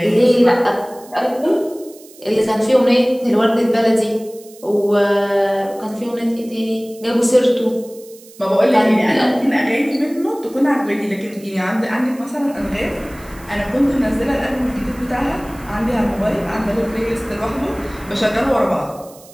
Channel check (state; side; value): noise; right; hiss, 23 dB below the sound